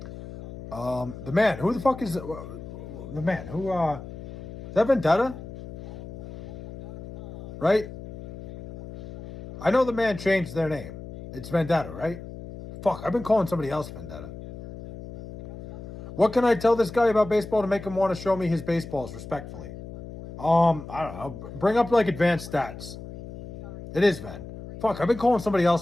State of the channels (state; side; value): noise; left; hum, 12 dB below the sound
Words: The man. Who the fuck is the man? Who, is that Vendetta? Right? I know the man changed their name. It's Vendetta, right? Fuck, I've been calling somebody else Vendetta. What can I tell this guy about baseball to make him want to show me his baseballs respectfully? I don't know. Bring up, advanced stats. It is Ven. Fuck, I've been calling somebody